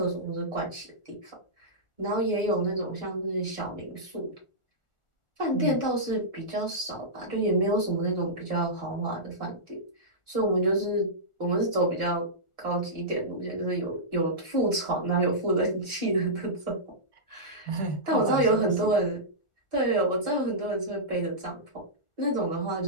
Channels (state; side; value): late; right; 1.4 ms